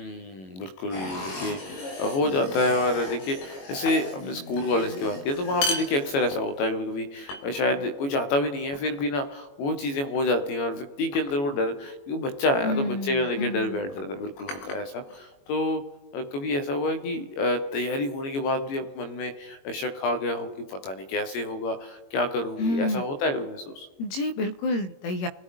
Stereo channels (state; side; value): late; right; 22 ms